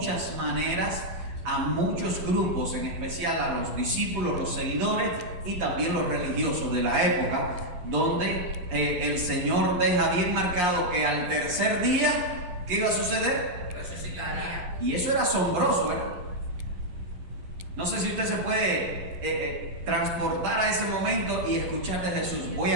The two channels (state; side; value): late; left; 11 ms